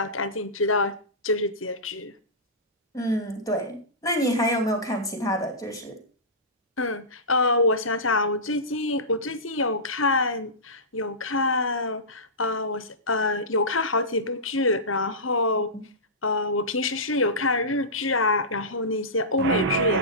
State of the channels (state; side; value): normal; both; correlation -0.19